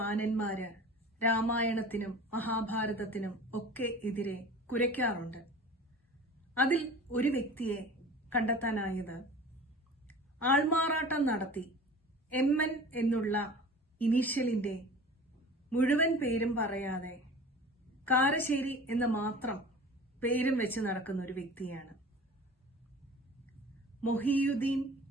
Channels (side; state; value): both; normal; correlation 0.40